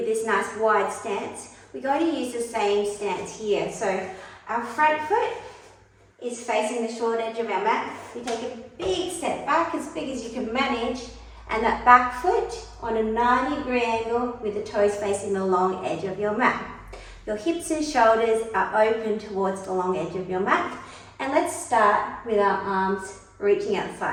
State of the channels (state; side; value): identical; both; correlation 1.00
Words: this nice wide stance. We're going to use the same stance here. So our front foot is facing the short edge of our mat. We take a big step back, as big as you can manage, and that back foot on a 90-degree angle with the toes facing the long edge of your mat. Your hips and shoulders are open towards the long edge of your mat. And let's start with our arms reaching